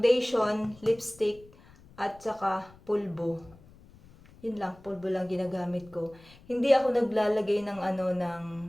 lipstick, at saka pulbo. Yun lang, pulbo lang ginagamit ko. Hindi ako naglalagay ng ng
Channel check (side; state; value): left; noise; rumble, 24 dB below the sound